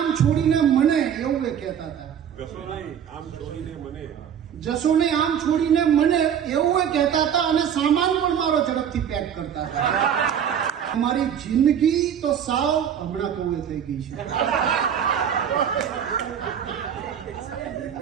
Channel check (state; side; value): quieter; left; 8.6 dB